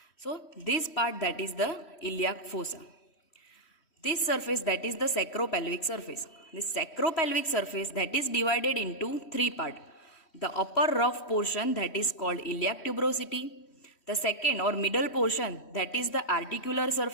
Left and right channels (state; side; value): late; right; 3.1 ms